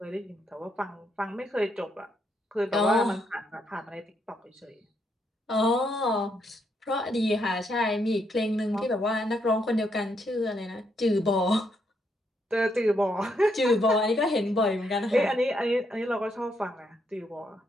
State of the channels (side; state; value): both; normal; correlation 0.76